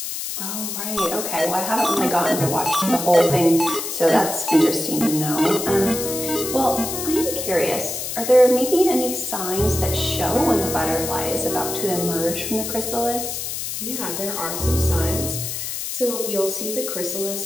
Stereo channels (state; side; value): noise; left; hiss, 5 dB below the sound